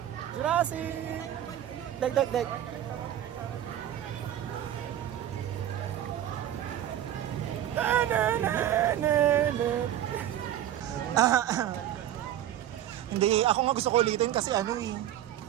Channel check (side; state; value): left; quieter; 11.7 dB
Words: Jurassic! Dek, dek, dek. Hindi, ako nga gusto ko ulitin kasi ano eh.